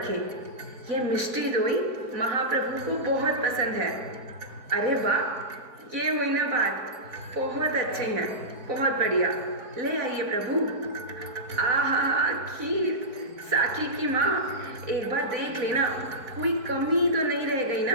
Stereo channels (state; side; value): late; left; 3.9 ms